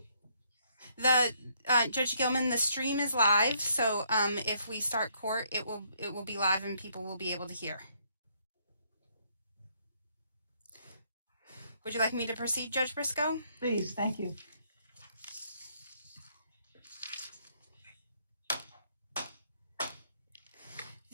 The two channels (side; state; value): both; inverted; correlation -0.70